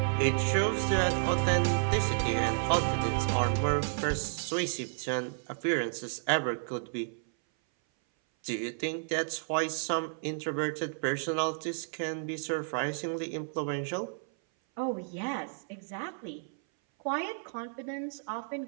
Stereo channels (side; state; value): left; silent; 57 dB below the other